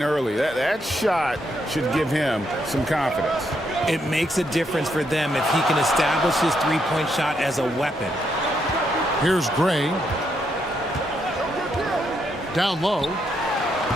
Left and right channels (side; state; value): both; normal; correlation 0.77